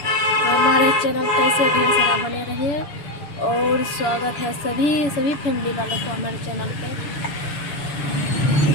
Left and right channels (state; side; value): late; right; 7.0 ms